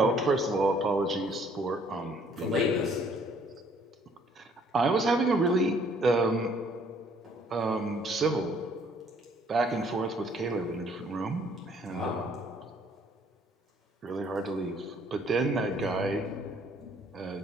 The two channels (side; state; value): both; normal; correlation 0.62